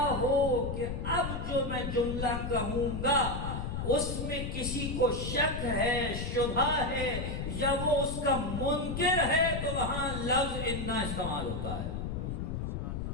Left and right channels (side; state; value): left; noise; rumble, 4 dB below the sound